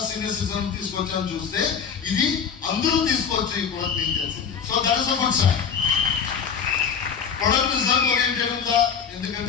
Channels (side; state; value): right; quieter; 6.9 dB